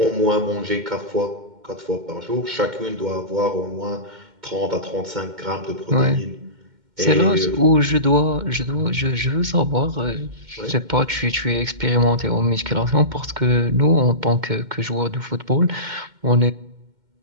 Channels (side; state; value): left; late; 2.1 ms